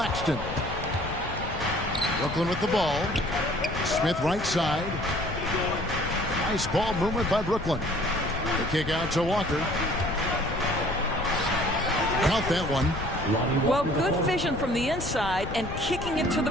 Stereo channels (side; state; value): left; noise; rumble, 8 dB below the sound